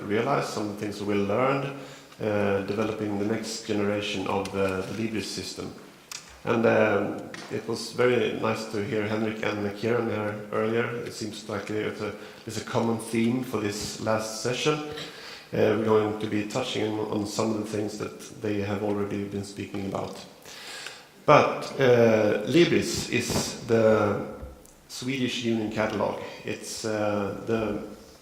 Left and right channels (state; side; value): identical; both; correlation 1.00